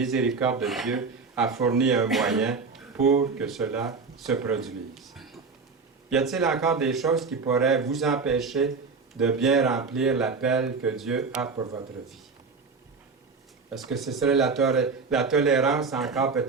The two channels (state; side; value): quieter; left; 4.7 dB